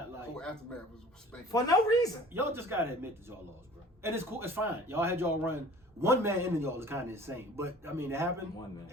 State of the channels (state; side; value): normal; both; correlation 0.47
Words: like. Oh, Aftermath was spanking. For no reason. Y'all just gotta admit that y'all lost, bro. And it's cool. It's fine. Y'all had y'all run. One man ending y'all is kind of insane, but I mean, it happened. One man.